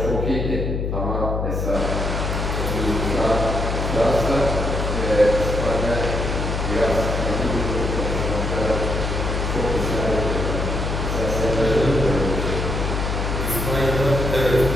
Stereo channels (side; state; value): left; noise; hum, 1 dB below the sound